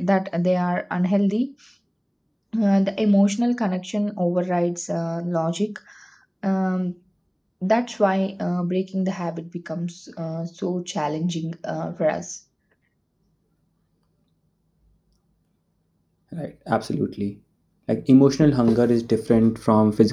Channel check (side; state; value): both; identical; correlation 1.00